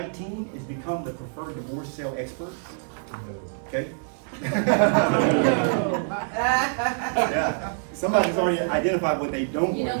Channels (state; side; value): silent; left; 61 dB below the other